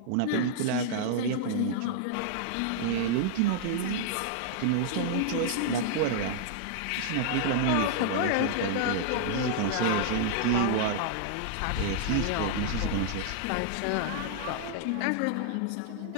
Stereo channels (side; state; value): both; different; correlation -0.01